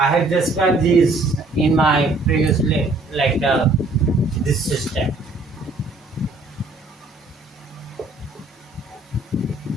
have described this in my previous lecture, this system.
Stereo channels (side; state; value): left; quieter; 3.0 dB